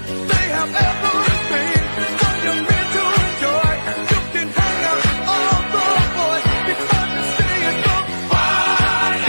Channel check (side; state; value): both; inverted; correlation -1.00